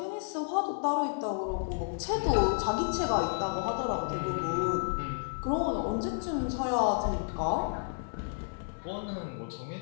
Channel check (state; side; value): silent; right; 57 dB below the other